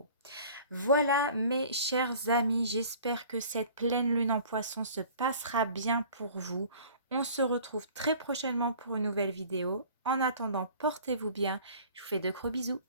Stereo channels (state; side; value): inverted; both; correlation -0.48